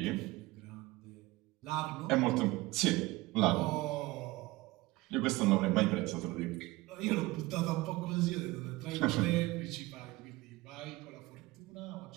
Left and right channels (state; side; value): quieter; left; 20.5 dB